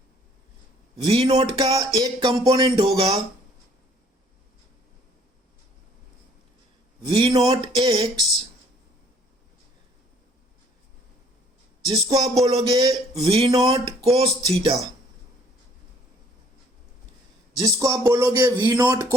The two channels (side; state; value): both; normal; correlation 0.59